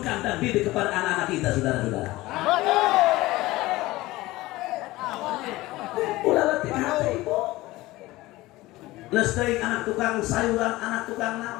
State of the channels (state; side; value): quieter; right; 18.8 dB